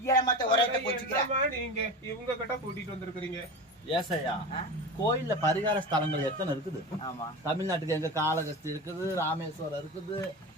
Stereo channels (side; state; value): both; normal; correlation 0.27